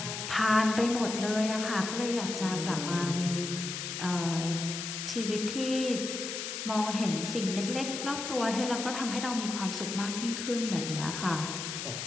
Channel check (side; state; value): left; noise; hiss, 5 dB below the sound